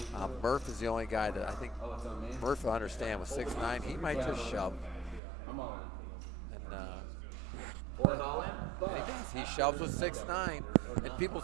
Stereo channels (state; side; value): drops out; left; at 5.2 s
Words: Murph is the only guy that I think Murph will understand with 6'9". He might just shove. And he does. He shoves with 6'9". And people